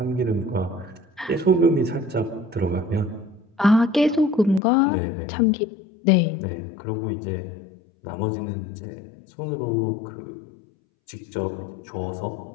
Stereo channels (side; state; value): right; drops out; at 4.6 s